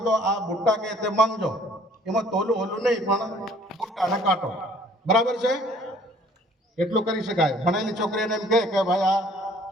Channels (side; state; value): both; normal; correlation 0.56